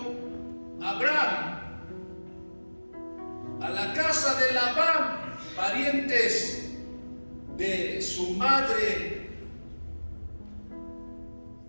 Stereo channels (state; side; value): inverted; both; correlation -1.00